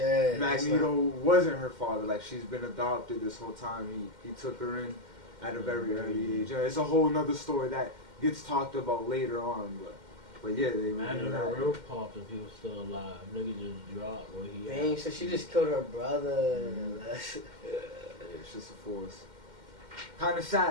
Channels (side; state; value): left; late; 2.1 ms